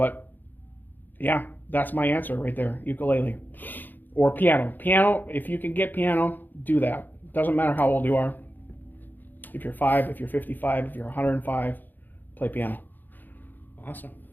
yeah, that's my answer right there. Ukulele. Or piano. Piano, if you can get piano, do that. Doesn't matter how old you are. If you're 5, if you're 55, if you're 105, play piano. Awesome.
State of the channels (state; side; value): late; right; 0.088 ms